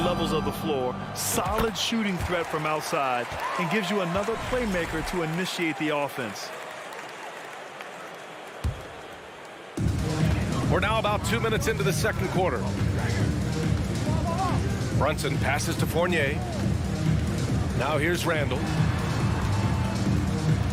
levels of the floor. Solid shooting threat from outside. And gives you another playmaker to initiate the offense. We're now about 2 minutes into the second quarter. Brunson passes to Fournier. Now here's Randall.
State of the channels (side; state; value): both; identical; correlation 1.00